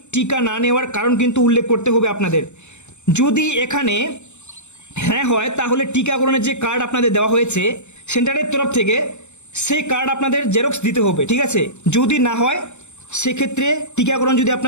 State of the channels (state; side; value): late; right; 0.83 ms